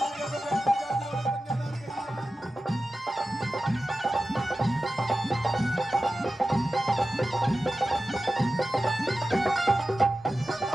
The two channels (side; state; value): both; normal; correlation 0.94